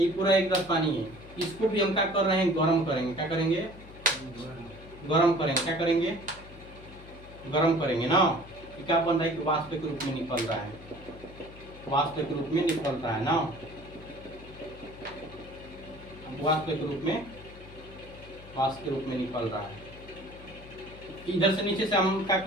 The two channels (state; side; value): noise; left; hum, 18 dB below the sound